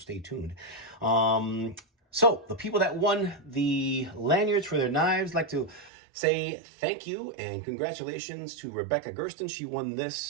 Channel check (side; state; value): left; drops out; at 5.9 s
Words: tuned. So the people that won the lanyards for their knives, like to say thank you and congratulations to Rebecca Gersten. She won